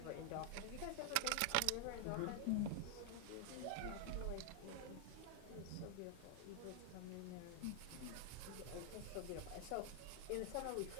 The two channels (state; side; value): different; both; correlation 0.00